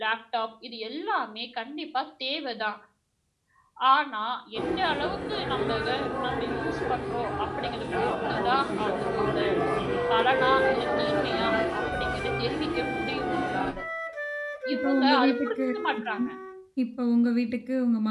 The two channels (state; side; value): identical; both; correlation 1.00